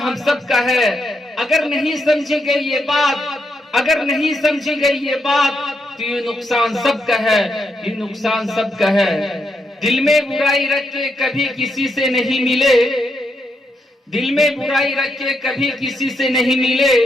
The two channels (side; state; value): both; normal; correlation 0.80